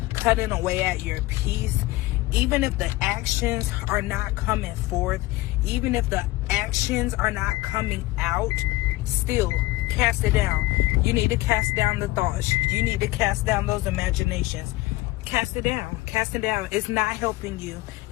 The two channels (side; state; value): right; quieter; 19.2 dB